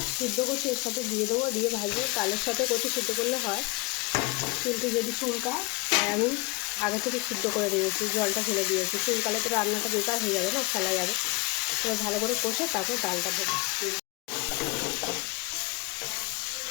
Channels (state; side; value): quieter; right; 24.5 dB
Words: সিদ্ধ করছি এর সাথে দিয়ে দেবো, দিয়ে ভাজবো। ডালের সাথে কচু সিদ্ধ করলে হয়, কিন্তু যদি চুলকায় তাই আমি আগে থেকে সিদ্ধ করে দিয়েছি, জলটা ফেলে দিয়েছি। চুলকালে তো রান্নাটা বেকার হয়ে যাবে না, ফেলা যাবে। এবার ভালো করে কষে তারপর ডালটা দেবো।